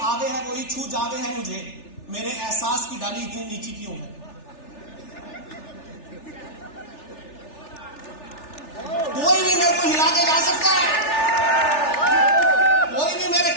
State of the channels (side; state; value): right; late; 3.4 ms